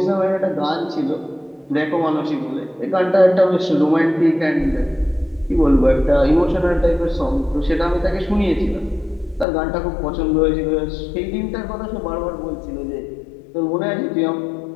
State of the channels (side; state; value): right; drops out; at 9.5 s